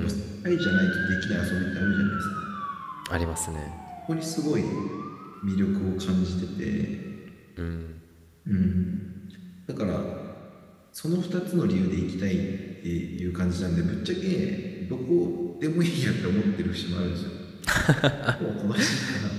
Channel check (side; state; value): both; identical; correlation 1.00